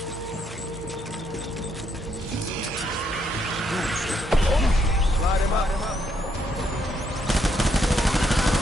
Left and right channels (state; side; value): normal; both; correlation 0.75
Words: Slide him up.